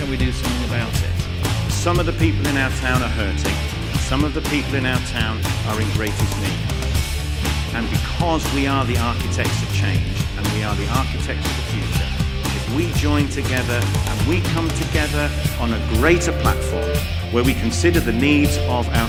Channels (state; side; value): identical; both; correlation 1.00